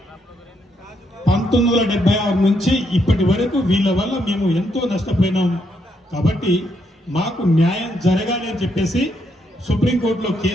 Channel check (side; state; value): both; normal; correlation 0.76